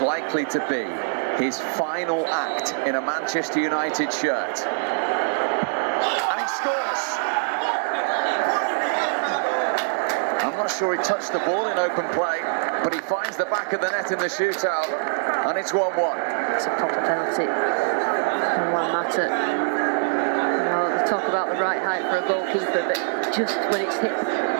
to be his final act in a Manchester United shirt. And he scores! I'm not sure he touched the ball in open play, but he finds the back of the net in the shootout, and it's 1-1. It's a proper penalty from Juan Mata. Well, they talk about the right height for a goalkeeper, but just when it's hit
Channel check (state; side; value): silent; left; 62 dB below the other